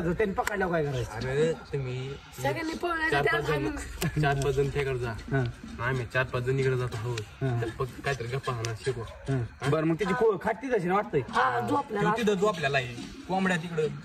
त्यांनी पकडल्यावर काय करायचं? अरे तुम्ही सगळ्यांनी चार पाच जण त्याकडे जा आम्ही 4-5 जण इकडे जातो हो फक्त काहीतरी गप्पा हाणा शिकू. बरं मग तिची खाटी तशी ना वाटतंय. तिथं जो आपल्याला आहे कोंबड्या तिकडे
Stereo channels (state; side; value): identical; both; correlation 1.00